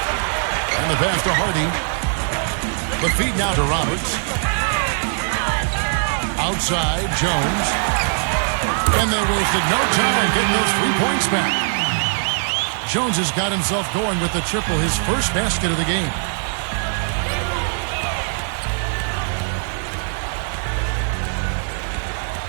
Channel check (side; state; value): left; silent; digital silence